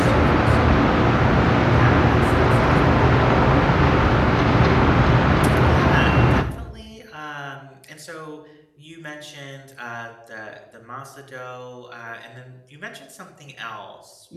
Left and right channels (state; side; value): identical; both; correlation 1.00